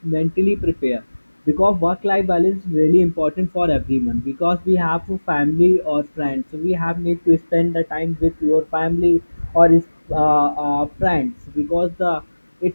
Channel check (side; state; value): both; inverted; correlation -1.00